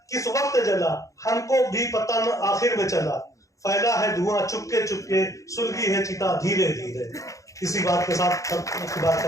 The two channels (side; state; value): right; late; 0.16 ms